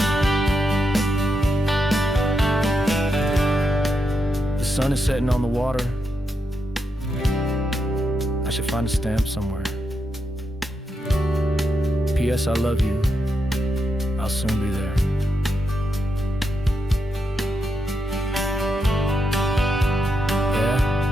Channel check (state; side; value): normal; both; correlation 0.84